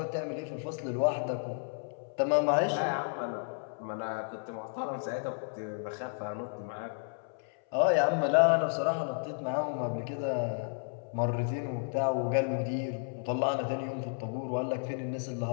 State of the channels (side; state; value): right; silent; 56 dB below the other